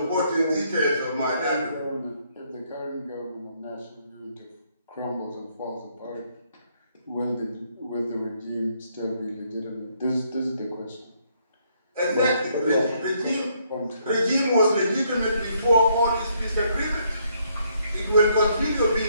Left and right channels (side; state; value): both; inverted; correlation -0.71